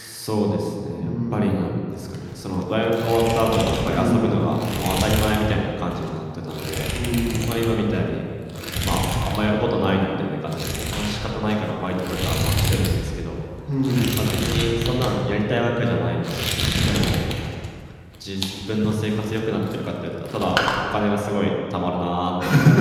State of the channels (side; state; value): both; identical; correlation 1.00